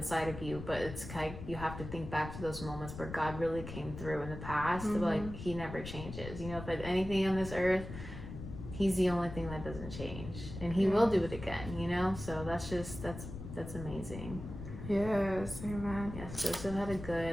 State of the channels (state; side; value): noise; left; rumble, 10 dB below the sound